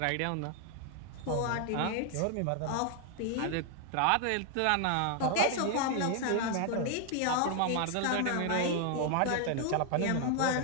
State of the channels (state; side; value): different; both; correlation 0.00